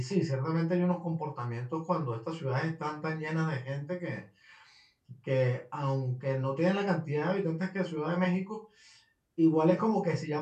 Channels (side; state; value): both; identical; correlation 1.00